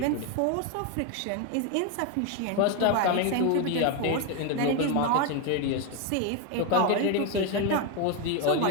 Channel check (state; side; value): different; both; correlation 0.02